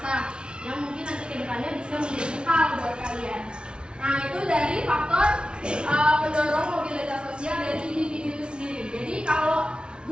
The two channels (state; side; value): late; left; 0.056 ms